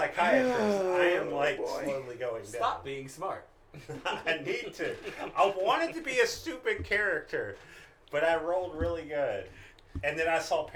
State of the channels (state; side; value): identical; both; correlation 1.00